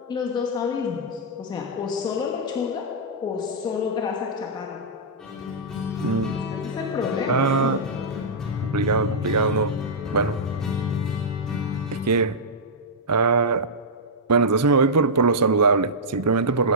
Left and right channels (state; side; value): normal; both; correlation -0.11